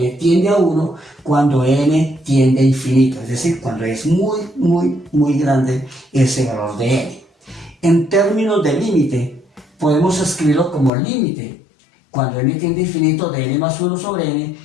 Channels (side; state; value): right; drops out; at 10.9 s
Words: tiende a 1 cuando n tiende a infinito, es decir, cuando es muy grande ese valor de n. En términos de límite, podemos escribirlo como límite. Cuando n tiende a infinito de n más 1 sobre n